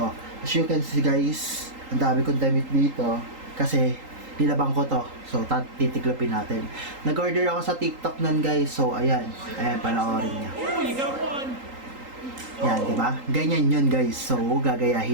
As you can see guys, ang dami kong damit dito kasi nilabang ko to. So, titiklopin natin. Nag-order ako sa TikTok nun guys. So, ayan. Ayan, panoorin niya. Yan, di ba? Ganyan yun guys. So,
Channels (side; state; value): left; late; 3.8 ms